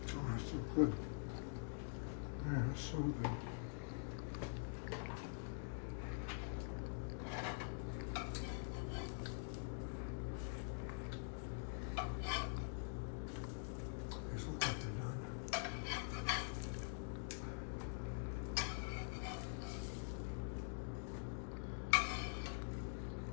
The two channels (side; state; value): right; silent; digital silence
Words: Oh, that's so good. Yeah, that's so good. These look like they're done.